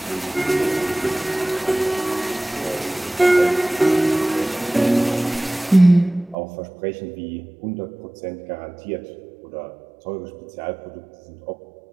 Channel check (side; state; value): left; drops out; at 6.4 s